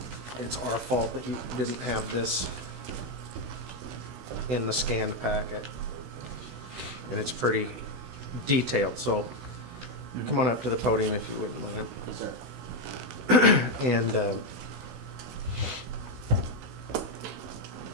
it's our fault that you didn't have this in the scanned packet. And it's pretty detailed, so come on up to the podium if you wouldn't mind. Yes, sir. And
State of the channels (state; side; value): late; left; 16 ms